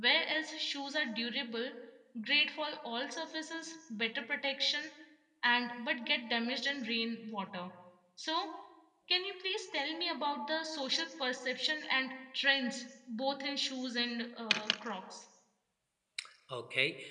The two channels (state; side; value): identical; both; correlation 1.00